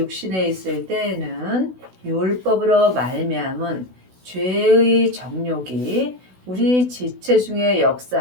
있을 때에는 율법으로 말미암은 죄의 정욕이 우리 지체 중에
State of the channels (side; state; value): left; late; 16 ms